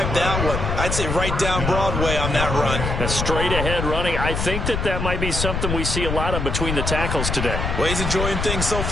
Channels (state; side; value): noise; left; rumble, 2 dB below the sound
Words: that one? I'd say right down Broadway on that run. A straight-ahead running. I think that might be something we see a lot of between the tackles today. Well, he's enjoying things so